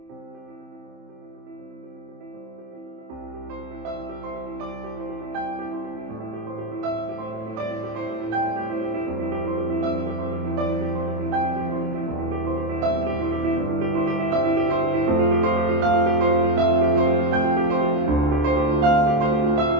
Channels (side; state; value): left; late; 27 ms